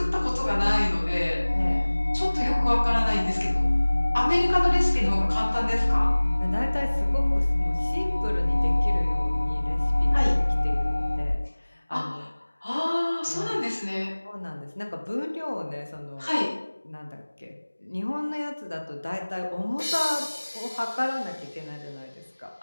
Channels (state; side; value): inverted; both; correlation -1.00